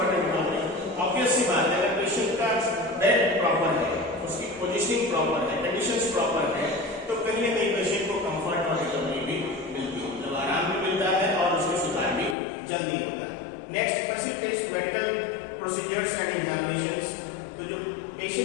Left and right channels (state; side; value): drops out; right; at 12.4 s